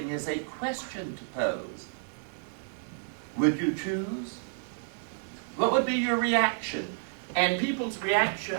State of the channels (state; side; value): silent; left; 58 dB below the other